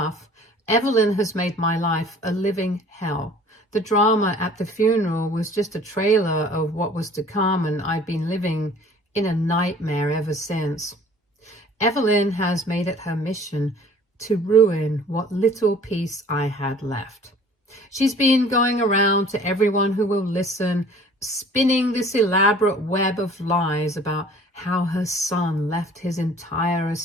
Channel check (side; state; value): both; normal; correlation 0.50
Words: Evelyn has made my life a living hell. The drama at the funeral was just a trailer of what was to come, and I've been living in a nightmare ever since. Evelyn has made it her mission to ruin what little peace I had left. She's been going around to everyone who will listen, spinning this elaborate web of lies about how her son left his entire